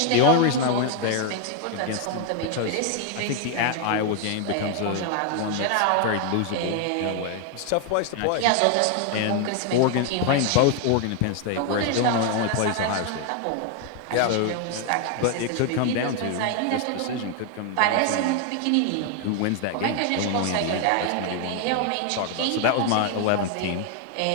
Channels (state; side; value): different; both; correlation 0.01